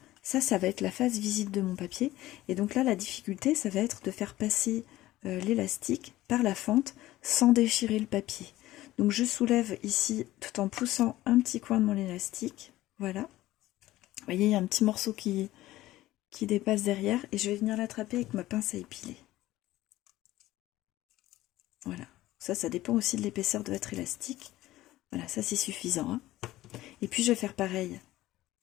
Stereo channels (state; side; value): quieter; right; 16.2 dB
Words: ça va être la phase visite de mon papier. Et donc là, la difficulté, ça va être de faire passer l'élastique par la fente sans déchirer le papier. Donc je soulève ici tout en poussant un petit coin de mon élastique. Voilà. Vous voyez, il y a un petit morceau qui dépasse derrière et je vais venir l'attraper avec ma pince à épiler. Voilà. Ça dépend aussi de l'épaisseur de votre élastique. Voilà, ça c'est suffisant. Hein. Et puis je vais faire pareil